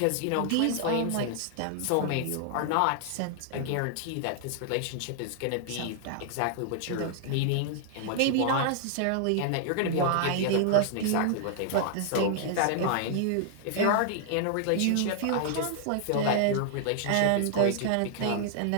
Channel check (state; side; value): different; both; correlation -0.01